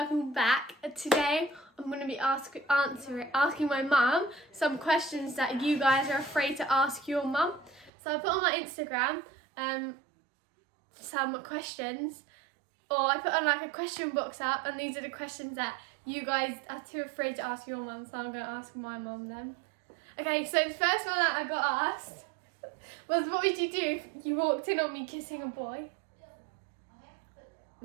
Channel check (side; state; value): left; drops out; at 7.9 s